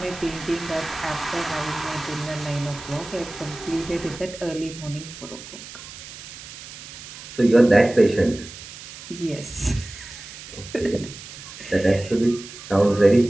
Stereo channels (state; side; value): noise; right; hiss, 14 dB below the sound